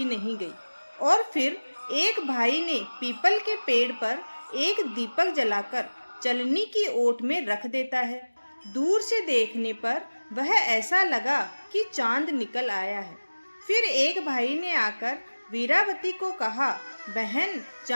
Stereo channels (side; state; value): both; inverted; correlation -1.00